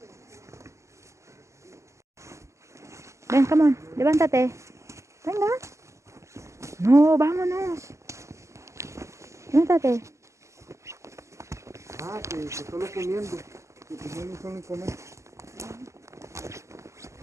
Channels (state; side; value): late; left; 0.14 ms